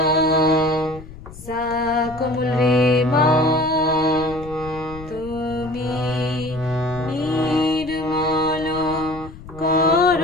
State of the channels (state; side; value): noise; left; rumble, 16 dB below the sound